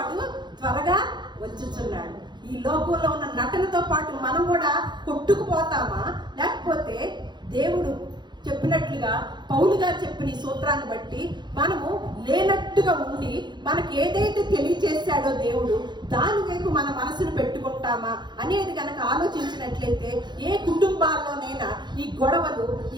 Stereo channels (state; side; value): late; left; 0.21 ms